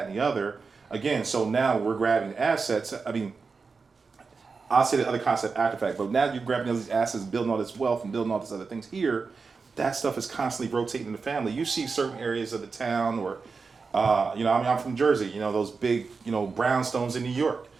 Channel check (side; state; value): left; quieter; 4.7 dB